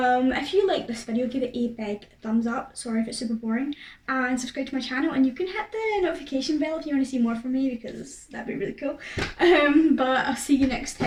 if you like this video, give it a big thumbs up. Sorry if it's super boring, and subscribe to my channel, and you can hit the notification bell if you want to see more from me, because that'd be really cool. But I'll see you next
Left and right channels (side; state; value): both; identical; correlation 1.00